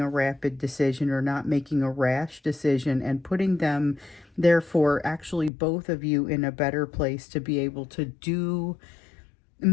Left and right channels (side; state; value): right; drops out; at 5.5 s